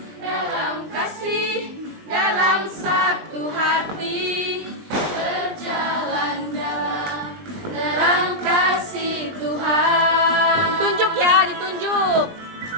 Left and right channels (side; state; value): left; late; 20 ms